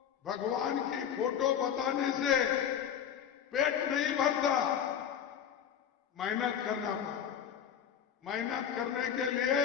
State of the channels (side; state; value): right; quieter; 8.6 dB